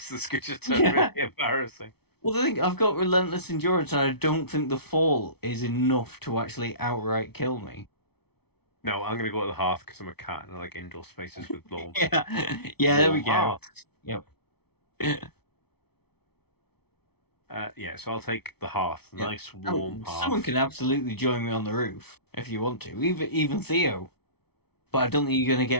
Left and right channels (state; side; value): late; right; 0.97 ms